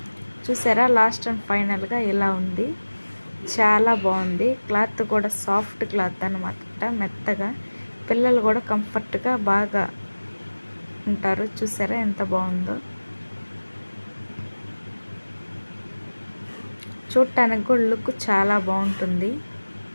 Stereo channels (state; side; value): inverted; both; correlation -1.00